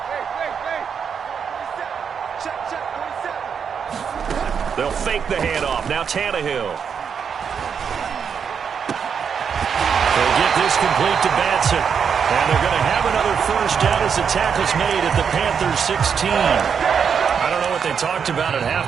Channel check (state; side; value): quieter; left; 6.9 dB